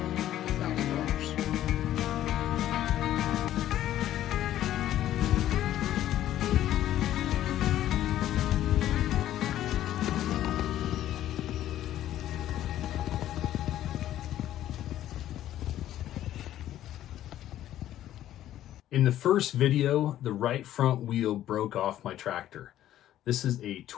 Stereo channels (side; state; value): right; quieter; 12.6 dB